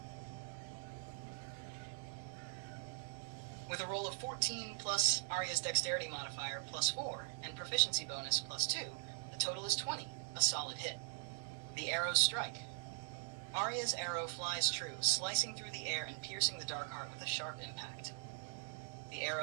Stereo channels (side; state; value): left; silent; digital silence